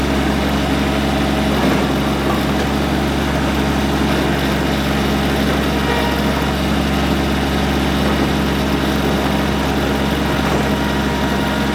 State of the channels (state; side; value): identical; both; correlation 1.00